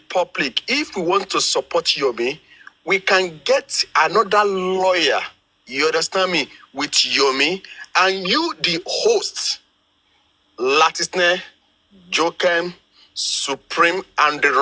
public, if we want to support Yomi, we can get another lawyer, you understand me, with Yomi, and you, the host, Latisne, Jokem, Supreme, and the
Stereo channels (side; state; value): both; identical; correlation 1.00